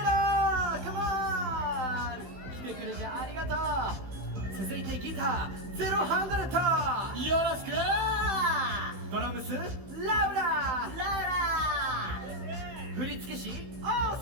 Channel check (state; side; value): late; left; 15 ms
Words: ラー、カモン、来てくれてありがとう。続いてギターゼロハンドレット、よろしく。ドラムスラウラ、振付師オー